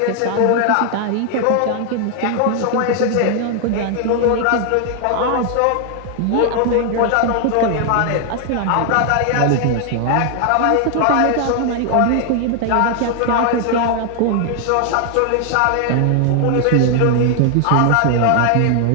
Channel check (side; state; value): both; different; correlation 0.00